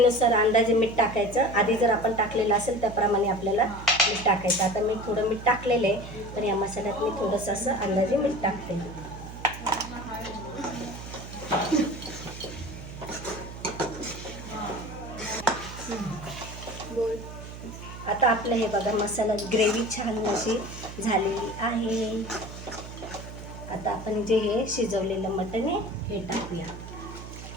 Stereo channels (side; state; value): right; noise; hum, 12 dB below the sound